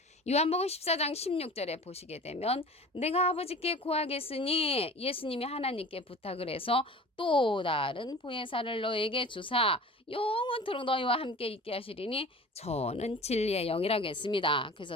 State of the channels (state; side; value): normal; both; correlation 0.40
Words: 요한복음 14장 16절에 보시게 되면 내가 아버지께 구하겠으니 예수님이 하나님께 부탁을 해서 또 다른 보혜사를 너에게 주사 영원토록 너희와 함께 있게 하시리니 저는 진리의 영이라고 했습니다.